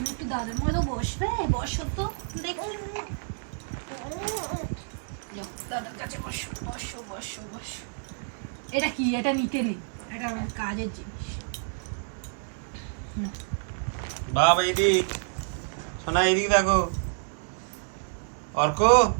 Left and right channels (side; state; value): left; silent; digital silence